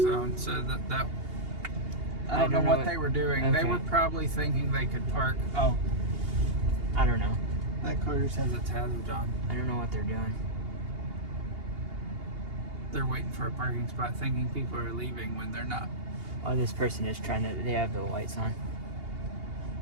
so that I don't know what they were doing. Okay. They were probably thinking they could park. Oh, I don't know. That car just has its hazards on. I don't know what they're doing. They're waiting for a parking spot, thinking people are leaving when they're not. Oh, this person is trying to. They have the lights on.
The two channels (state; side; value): late; left; 2.8 ms